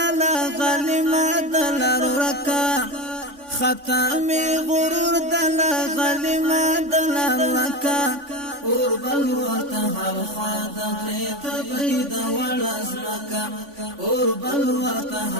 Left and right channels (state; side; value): late; left; 3.5 ms